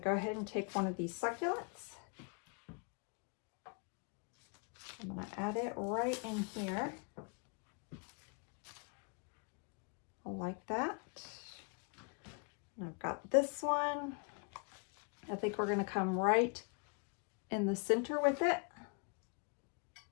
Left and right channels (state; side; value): quieter; right; 37.0 dB